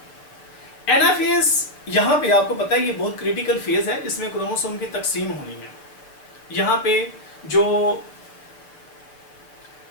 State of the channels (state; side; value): late; right; 6.9 ms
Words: Anaphase यहाँ पे आपको पता है ये बहुत क्रिटिकल फेज है, इसमें क्रोमोसोम की तकसीम होनी है। यहाँ पे जो